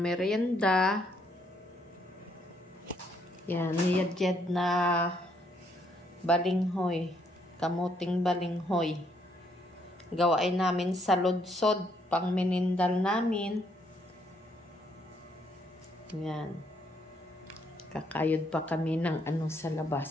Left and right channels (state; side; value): normal; both; correlation 0.71